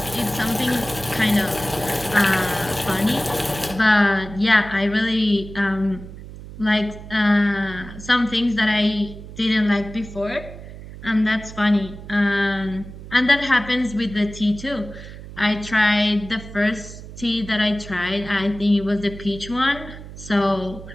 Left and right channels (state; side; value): noise; right; hum, 14 dB below the sound